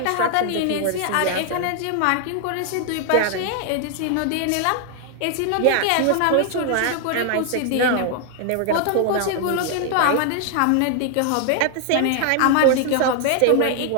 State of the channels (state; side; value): different; both; correlation 0.00